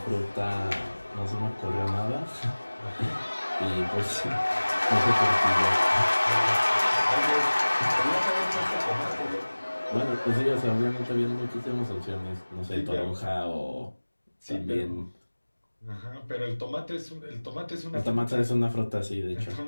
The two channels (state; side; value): inverted; both; correlation -1.00